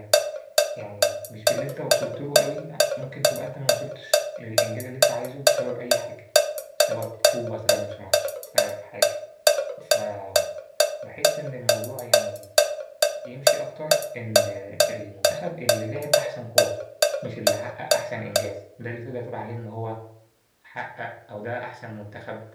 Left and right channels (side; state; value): both; identical; correlation 1.00